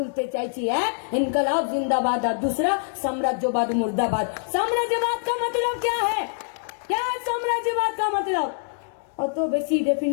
চাইছি, এক ইনকলাব জিন্দাবাদ আর दूसरा সাম্রাজ্যবাদ মুর্দাবাদ। সাম্রাজ্যবাদ का मतलब क्या है? क्या है সাম্রাজ্যবাদ का मतलब? অত বেশি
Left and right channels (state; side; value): silent; right; digital silence